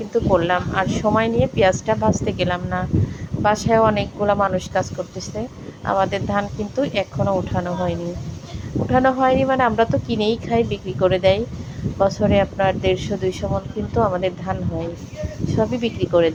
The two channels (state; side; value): identical; both; correlation 1.00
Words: করলাম, আর সময় নিয়ে পেঁয়াজটা ভাজতে গেলাম না। বাসায় অনেকগুলো মানুষ কাজ করতেছে। আমাদের ধান কিন্তু এখনও উঠানো হয়নি। মানে আমরা তো কিনেই খাই, বিক্রি করে দেয়। বছরে আপনার 150-200 মণ কিন্তু আমাদের ধান হয়, সবই বিক্রি করে